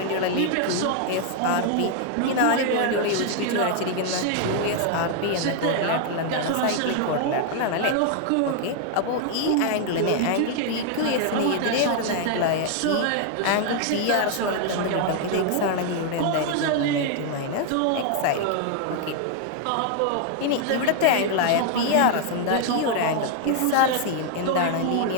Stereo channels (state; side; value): different; both; correlation 0.00